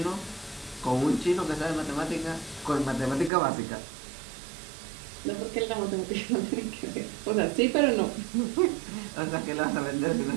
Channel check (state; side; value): drops out; left; at 3.3 s